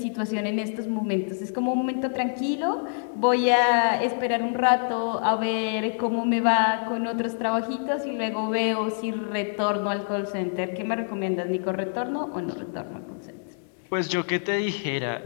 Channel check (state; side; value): silent; right; digital silence